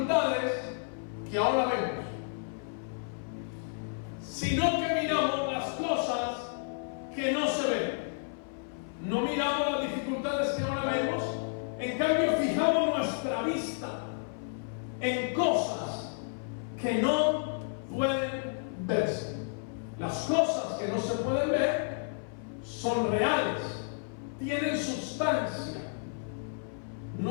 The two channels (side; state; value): right; silent; 55 dB below the other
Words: que ahora vemos, sino que miramos las cosas que no se ven. No miramos las dificultades que ahora vemos, en cambio fijamos nuestra vista en cosas que no pueden verse. Las cosas que no se pueden ver son reales, tienen sustancia.